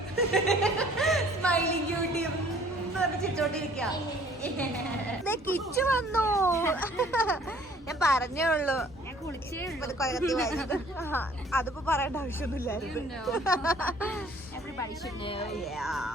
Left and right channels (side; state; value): both; normal; correlation 0.56